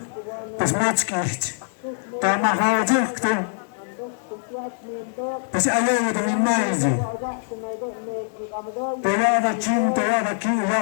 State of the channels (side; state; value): right; silent; digital silence